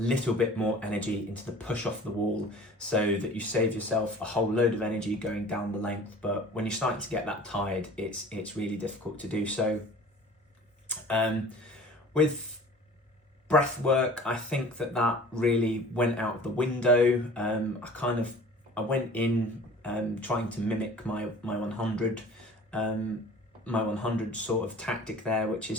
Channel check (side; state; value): both; normal; correlation 0.44